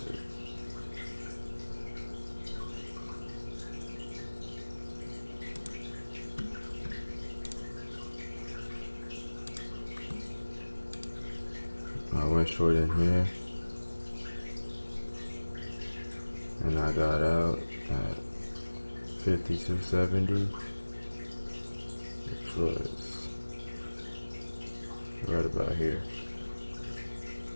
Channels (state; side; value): inverted; both; correlation -1.00